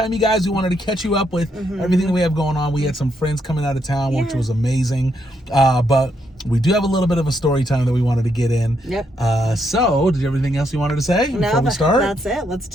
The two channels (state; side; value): normal; both; correlation 0.77